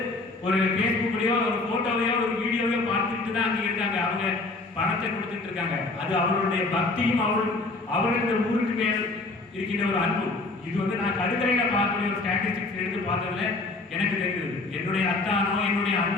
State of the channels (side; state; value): right; quieter; 3.3 dB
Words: ஒரு ஃபேஸ்புக்லயோ ஒரு போட்டோவையோ ஒரு வீடியோவையோ பார்த்துட்டு தான் அங்க இருக்காங்க. அவங்க பணத்தை கொடுத்துட்டு இருக்காங்க. அது அவர்களுடைய பக்தியும் அவர்களுடைய ஊருக்கு மேல் இருக்கின்ற ஒரு அன்பு. இது வந்து நான் கடுக்கரையில பார்க்கக்கூடிய ஒரு ஸ்டாட்டிஸ்டிக்ஸ் எடுத்து பார்த்ததுல எனக்கு தெரியுது. என்னுடைய அத்தானோ, என்னுடைய